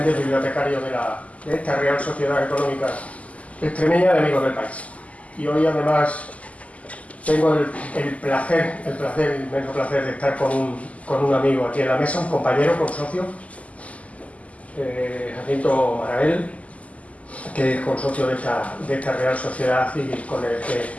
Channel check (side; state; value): right; late; 0.069 ms